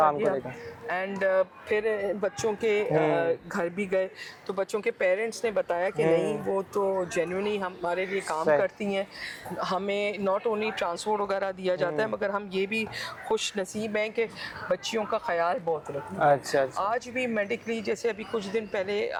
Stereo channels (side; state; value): both; identical; correlation 1.00